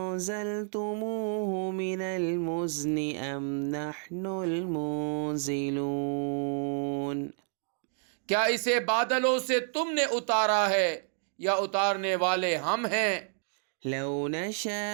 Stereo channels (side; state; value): left; silent; 58 dB below the other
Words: مِنَ الْمُزْنِ أَمْ نَحْنُ الْمُنزِلُونَ۔ کیا اسے بادلوں سے تم نے اتارا ہے یا اتارنے والے ہم ہیں؟ لَوْ